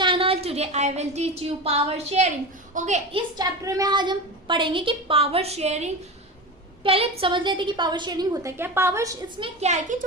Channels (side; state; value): both; normal; correlation 0.26